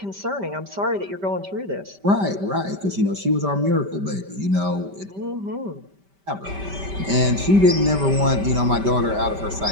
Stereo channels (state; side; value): late; left; 5.1 ms